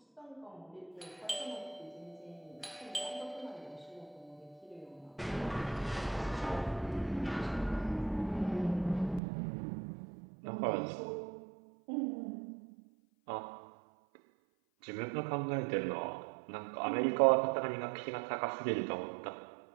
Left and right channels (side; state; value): left; drops out; at 9.2 s